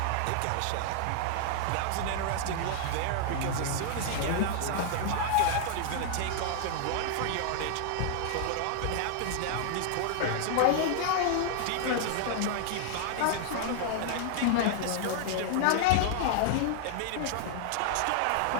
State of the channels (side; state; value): both; different; correlation -0.01